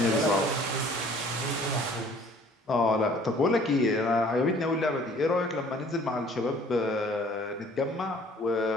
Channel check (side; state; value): both; normal; correlation 0.54